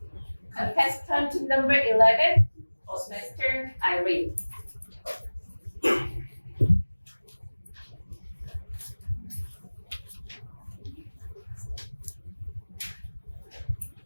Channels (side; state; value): both; inverted; correlation -1.00